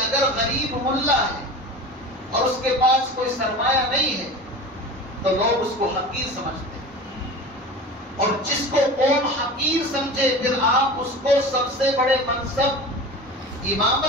غریب ملا ہے اور اس کے پاس کوئی سرمایہ نہیں ہے تو لوگ اس کو حقیر سمجھتے ہیں. اور جس کو قوم حقیر سمجھے پھر آپ اس کو سب سے بڑے منصب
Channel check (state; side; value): normal; both; correlation 0.34